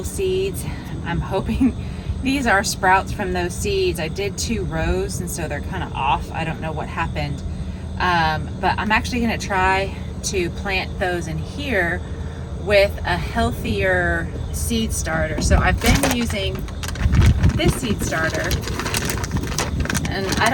seeds. I'm hoping these are sprouts from those seeds. I did 2 rows, and so they're kind of off. I don't know what happened. But I'm actually going to try to plant those in here with a healthier seed starter. So I've been using this seed starter, and I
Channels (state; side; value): identical; both; correlation 1.00